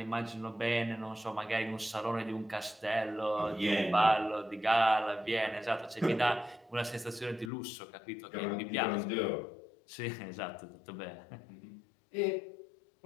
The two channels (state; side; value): drops out; right; at 7.5 s